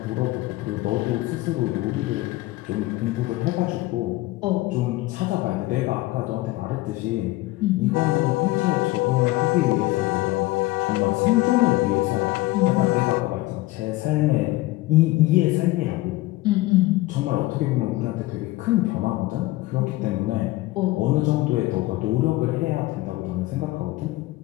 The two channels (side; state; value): right; quieter; 18.8 dB